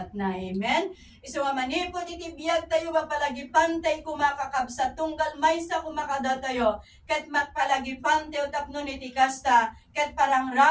na. Amen. Isu nga manipod iti biyag tayo mapalagipan tayo kumakakabsat tunggal maysa kumakada tayo ket magpalagipan tayo tapno iti kasta ket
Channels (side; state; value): both; identical; correlation 1.00